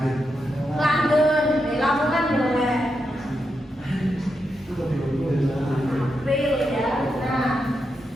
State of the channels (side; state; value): both; normal; correlation 0.85